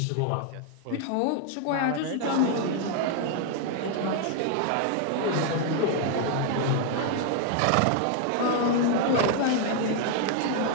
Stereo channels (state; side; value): different; both; correlation 0.00